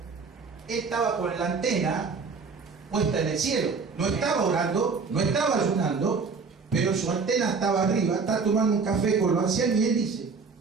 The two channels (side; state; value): left; quieter; 4.9 dB